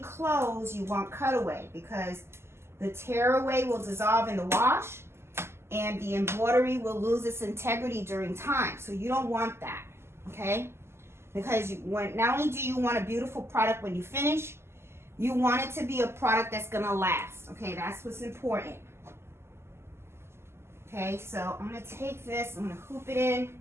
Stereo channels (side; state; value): left; late; 0.12 ms